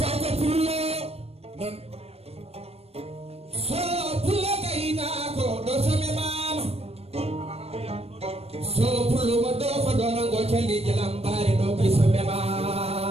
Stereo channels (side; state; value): left; late; 0.29 ms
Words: pullo nan so pullo kayna ko ɗo some mama so pullo mo ɗo fa ɗo nango calliji lambare ɗo koye some mama